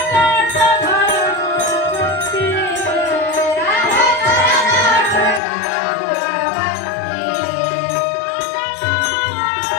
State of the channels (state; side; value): drops out; right; at 5.4 s